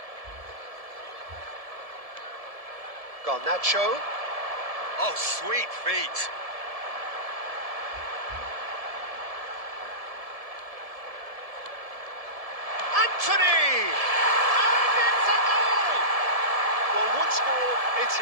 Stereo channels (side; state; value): left; late; 1.7 ms